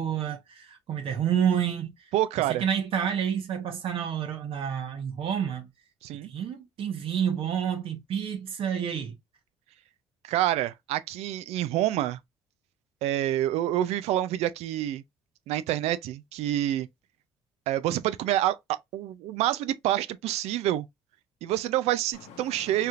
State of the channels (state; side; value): quieter; left; 10.8 dB